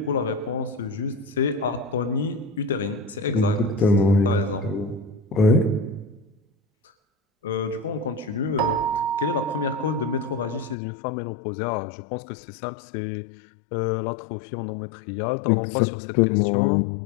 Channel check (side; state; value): right; drops out; at 10.8 s